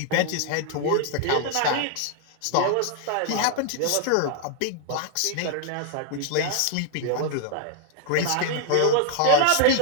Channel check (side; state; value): both; different; correlation 0.00